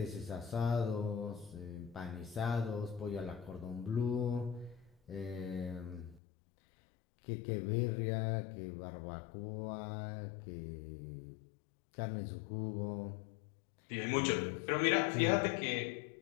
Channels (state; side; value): drops out; right; at 6.2 s